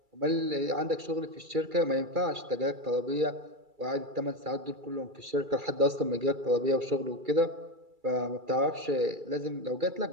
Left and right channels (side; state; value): left; late; 2.3 ms